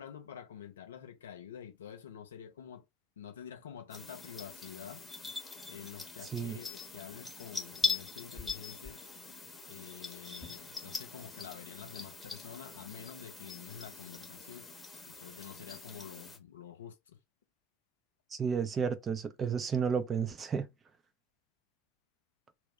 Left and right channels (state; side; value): normal; both; correlation 0.58